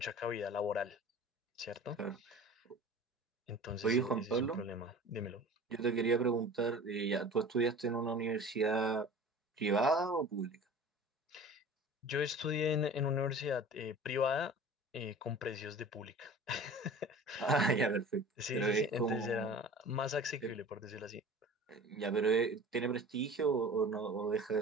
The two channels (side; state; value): both; normal; correlation 0.40